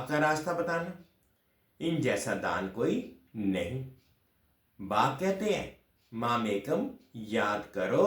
का रास्ता बताना? इन जैसा दान कोई नहीं। बाप कहते हैं मामेकम याद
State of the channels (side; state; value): both; identical; correlation 1.00